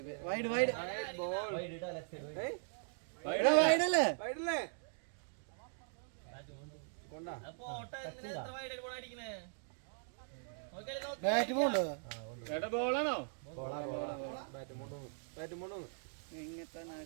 വൈഡ് വൈഡ് വൈഡല്ലേ വൈഡല്ലേ കൊണ്ടാ ബാറ്റ് പോണ്ടോ ചേട്ടാ ബോളാണോ ബാറ്റ് കൊണ്ടുവന്നു ഇങ്ങനത്തെ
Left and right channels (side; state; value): left; silent; digital silence